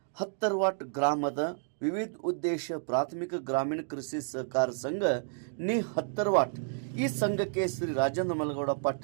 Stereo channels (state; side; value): silent; left; digital silence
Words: ಹತ್ತರ್ವಾಟ್ ಗ್ರಾಮದ ವಿವಿಧ ಉದ್ದೇಶ ಪ್ರಾಥಮಿಕ ಗ್ರಾಮೀಣ ಕೃಷಿ ಸಹಕಾರ ಸಂಘ ನಿ ಹತ್ತರ್ವಾಟ್ ಈ ಸಂಘಕ್ಕೆ ಶ್ರೀ ರಾಜೇಂದ್ರ ಮಲಗೌಡ